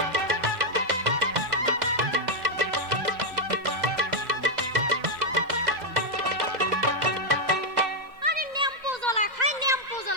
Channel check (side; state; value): left; late; 2.0 ms